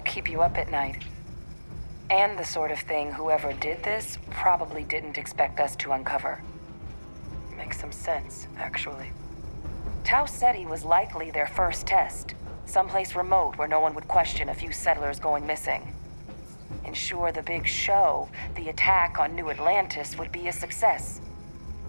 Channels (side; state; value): both; inverted; correlation -1.00